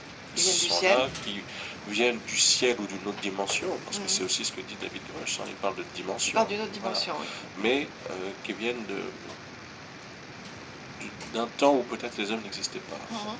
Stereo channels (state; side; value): identical; both; correlation 1.00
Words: viennent du ciel ou d'une autre dimension, parce que c'est aussi ce que dit David Grush, il parle de dimension. Il parle d'une autre dimension, oui. Mais qui viennent d'un temps où peut-être les hommes n'existaient pas.